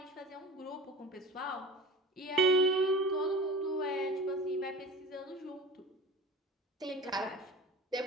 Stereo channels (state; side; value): normal; both; correlation 0.35